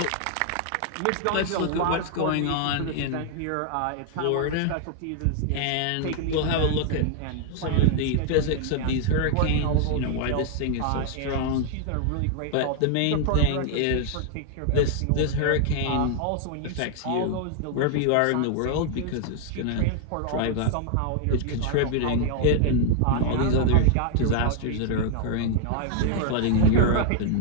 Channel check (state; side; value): different; both; correlation 0.00